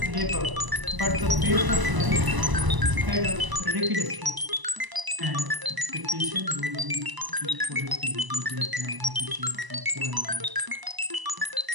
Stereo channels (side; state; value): left; late; 1.0 ms